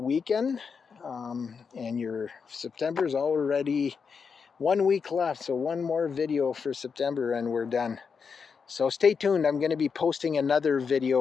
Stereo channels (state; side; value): quieter; right; 5.8 dB